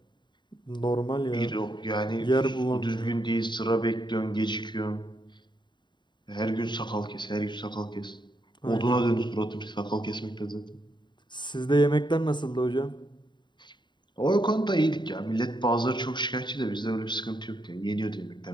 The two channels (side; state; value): right; late; 0.22 ms